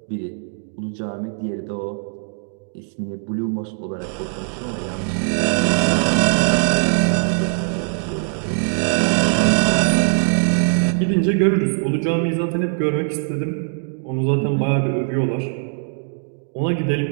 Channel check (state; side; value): silent; left; digital silence